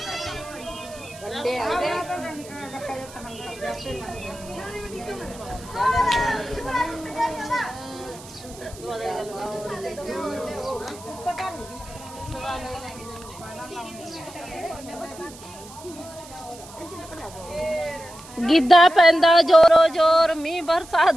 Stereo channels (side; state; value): right; noise; hiss, 19 dB below the sound